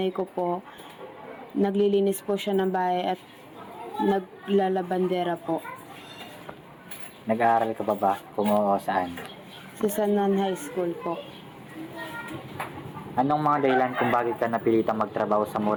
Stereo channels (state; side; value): identical; both; correlation 1.00